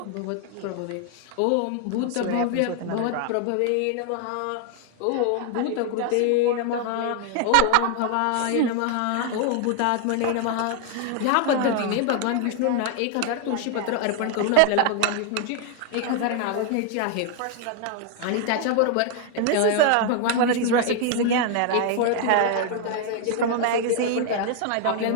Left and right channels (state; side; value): different; both; correlation 0.00